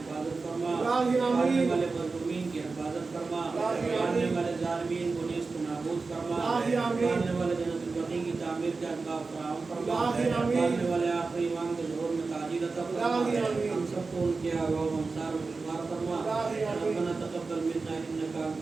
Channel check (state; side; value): quieter; left; 4.1 dB